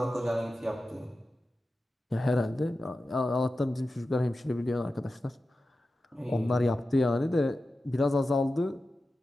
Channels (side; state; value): both; normal; correlation 0.93